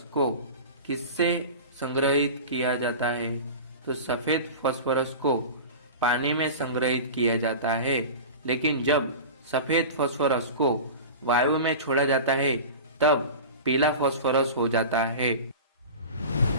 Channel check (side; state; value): both; inverted; correlation -0.32